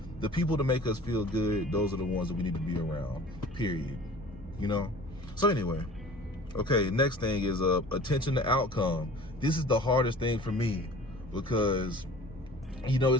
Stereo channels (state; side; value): normal; both; correlation 0.45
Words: the people that make us feel good, those are the ones that we need to be around, period. You know? So anyway, okay, next thing is attention to outcome. This is the hardest thing for me, because, you know,